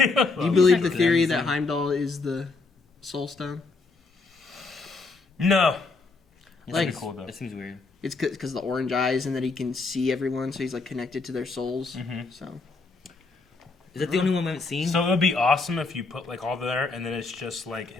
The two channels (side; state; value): right; quieter; 3.9 dB